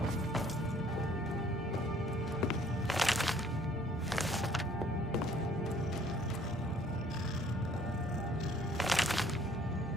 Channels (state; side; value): normal; both; correlation 0.60